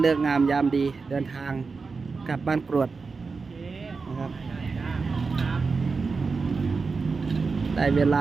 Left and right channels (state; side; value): quieter; left; 4.5 dB